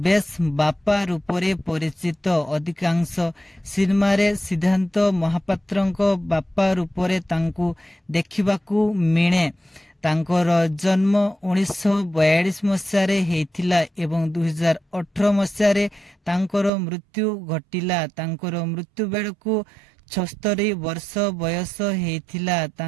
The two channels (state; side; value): drops out; left; at 16.7 s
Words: ବେଶ୍ ବାପା ରୂପରେ ପରିଚିତ। ଅଧିକାଂଶ ସିନେମାରେ ସିଦ୍ଧାନ୍ତ ମହାପାତ୍ରଙ୍କ ବାପା ରୂପରେ ତାଙ୍କୁ ଦେଖିବାକୁ ମିଳେ। ତାଙ୍କର ଜନ୍ମ 1942 ମସିହାରେ ହେଇଥିଲା ଏବଂ 2018 ମସିହାରେ ତାଙ୍କର ମୃତ୍ୟୁ ଘଟିଲା। ତାଙ୍କର ମୃତ୍ୟୁ ବେଳକୁ 76 ବର୍ଷ ବୟସ ହେଇଥିଲା।